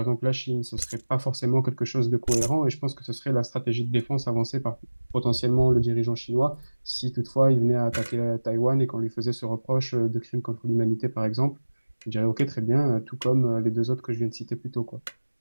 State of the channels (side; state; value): both; inverted; correlation -1.00